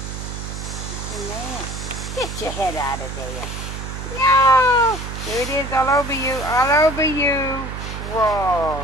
It's in there. Get your head out of there. No! There it is, all over you. All over you.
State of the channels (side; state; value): right; noise; hum, 7 dB below the sound